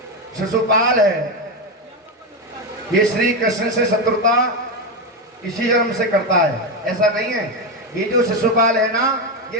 शिशुपाल है ये श्री कृष्ण से शत्रुता इसी जन्म से करता है, ऐसा नहीं है। ये जो शिशुपाल है ना,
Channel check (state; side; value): normal; both; correlation 0.11